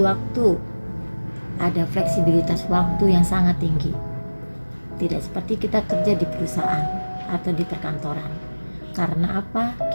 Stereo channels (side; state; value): both; inverted; correlation -1.00